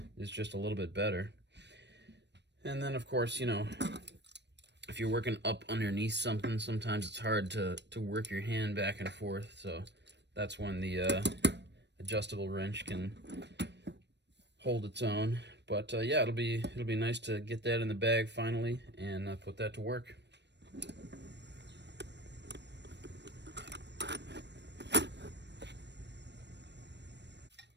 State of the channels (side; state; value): left; late; 0.50 ms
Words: just a little bit better. And then, of course, you know, if you're working up underneath something, sometimes it's hard to work your hand back and forth. So that's when the adjustable wrench can hold its own. But yeah, it'll be nice to get that in the bag finally and put that to work.